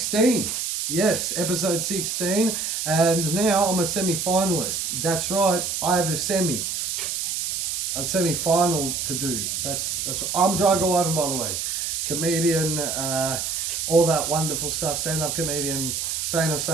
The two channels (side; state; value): right; noise; hiss, 2 dB below the sound